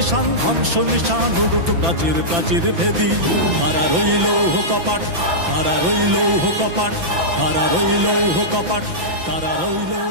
ধ্বংস নিশান উড়ুক প্রাচীর প্রাচীর ভেদী। কারা রইল কপাট, কারা রইল কপাট, কারা রইল কপাট, কারা রইল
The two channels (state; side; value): late; left; 6.0 ms